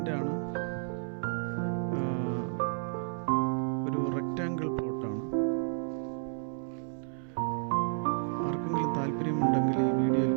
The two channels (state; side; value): silent; left; 57 dB below the other